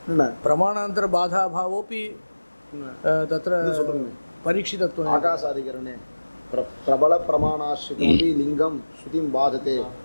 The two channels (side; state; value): both; inverted; correlation -1.00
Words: न प्रमाणान्तरबाधाभावोऽपि तत्र परीक्षितत्वम्। आकाशादिकरणे प्रबलप्रमाणाश्रितमपि लिङ्गं श्रुतिं बाधते